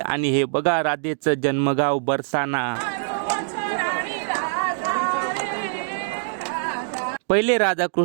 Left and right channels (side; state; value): left; silent; 63 dB below the other